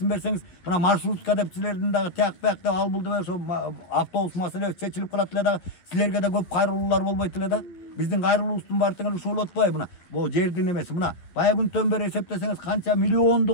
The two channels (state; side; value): late; right; 11 ms